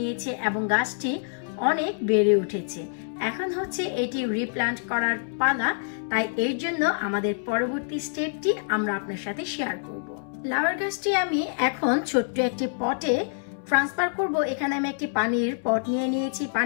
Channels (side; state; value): right; silent; 61 dB below the other